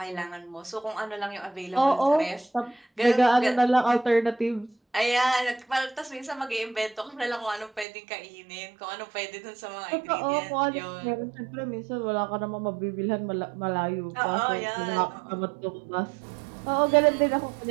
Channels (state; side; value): drops out; left; at 7.9 s